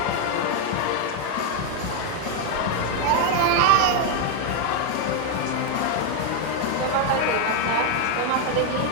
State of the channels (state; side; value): different; both; correlation 0.01